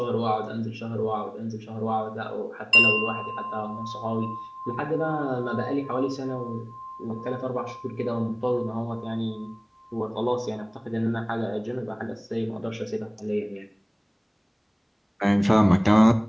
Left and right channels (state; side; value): identical; both; correlation 1.00